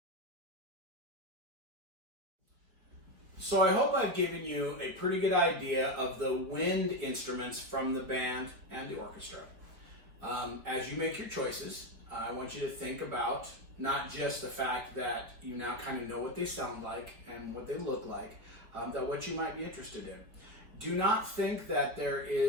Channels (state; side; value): late; left; 4.4 ms